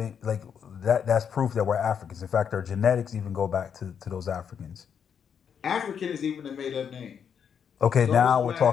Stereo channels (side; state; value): right; quieter; 7.6 dB